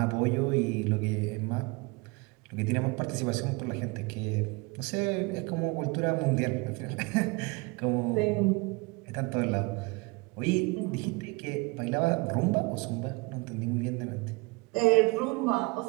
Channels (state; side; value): quieter; left; 26.8 dB